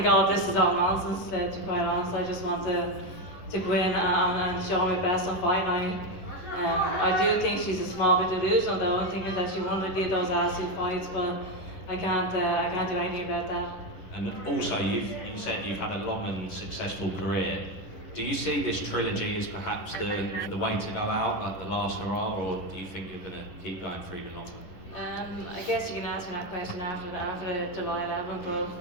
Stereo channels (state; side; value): late; right; 10 ms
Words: all of this is all nonsense, to be quite honest. I just want to go in and show my best on fight night. I do think she's a small bit delusional though. I'm thinking that she wanted to do those attitude fights, but I can't do anything about that. And also, you said you've had a long and successful career. Do you see this trilogy as perhaps the way to go out, like the last hurrah, or do you think you're going to keep going for even longer? I guess you can ask me that question after July 11th, but